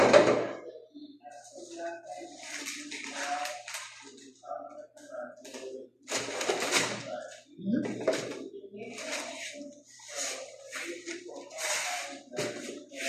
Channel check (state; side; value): identical; both; correlation 1.00